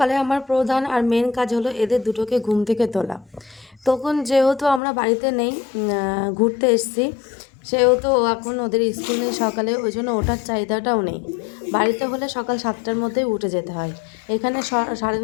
আমার প্রধান আর মেন কাজ হলো এদের দুটোকে ঘুম থেকে তোলা। তখন যেহেতু আমরা বাড়িতে নেই, ঘুরতে এসেছি, সেহেতু এখন ওদের স্কুল নেই সকালে, ওই জন্য ওঠার চাহিদাটাও নেই। বাড়িতে হলে সকাল 7টার মধ্যেই উঠে যেতে হয়, এখানে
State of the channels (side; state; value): right; drops out; at 4.8 s